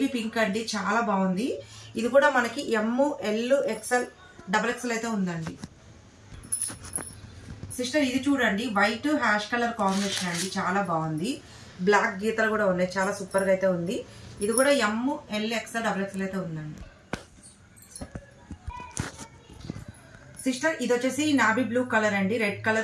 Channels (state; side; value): identical; both; correlation 1.00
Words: పింక్ అండి, చాలా బాగుంది. ఇది కూడా మనకి ఎం, ఎల్, ఎక్సెల్, డబుల్ ఎక్సెల్ అయితే ఉందండి. సిస్టర్ ఇది చూడండి, వైట్ హ్యాష్ కలర్ కాంబినేషన్ అండి, చాలా బాగుంది. బ్లాక్ గీతలు కూడా ఉన్నాయి, చాలా సూపర్ గా అయితే ఉంది. ఇది కూడా ఎం, ఎల్, ఎక్సెల్, డబుల్ ఎక్సెల్ అయితే ఉందండి. సిస్టర్ ఇది వచ్చేసి నావీ బ్లూ కలర్ అండి, రెడ్